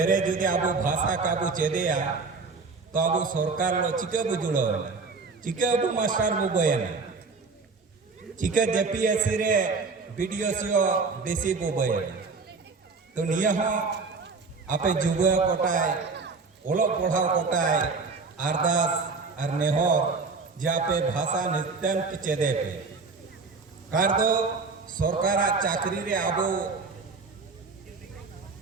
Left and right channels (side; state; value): left; quieter; 4.3 dB